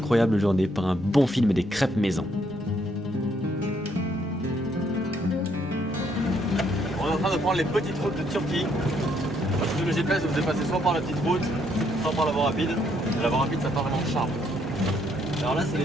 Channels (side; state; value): both; normal; correlation 0.71